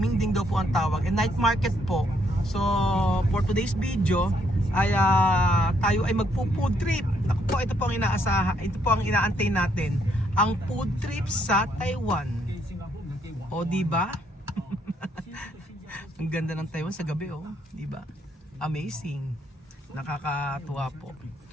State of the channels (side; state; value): both; normal; correlation 0.72